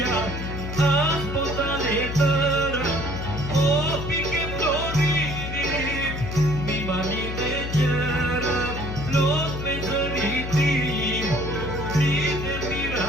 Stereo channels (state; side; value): noise; left; hum, 5 dB below the sound